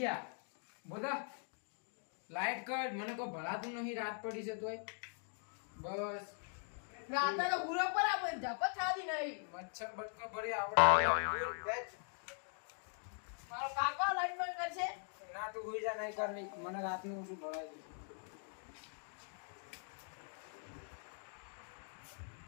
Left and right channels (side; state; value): right; silent; 50 dB below the other